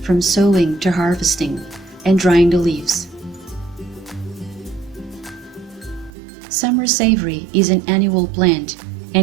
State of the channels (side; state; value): left; drops out; at 6.1 s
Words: from sowing to harvesting and drying the leaves. Summer savory is an annual plant